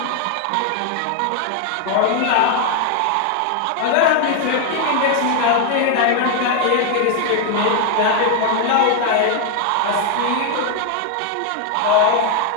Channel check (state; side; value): different; both; correlation 0.00